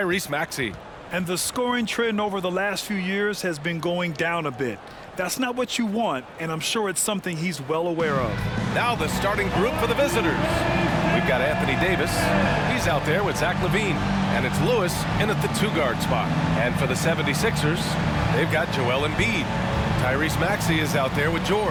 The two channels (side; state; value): both; identical; correlation 1.00